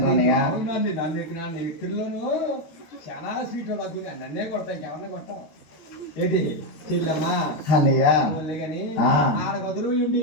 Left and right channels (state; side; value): late; right; 13 ms